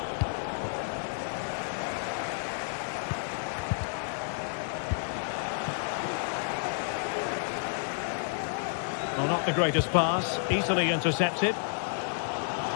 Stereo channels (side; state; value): right; silent; digital silence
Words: Well, not the greatest pass, easily intercepted.